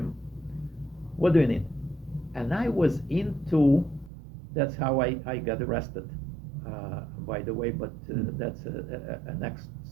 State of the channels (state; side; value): drops out; left; at 4.1 s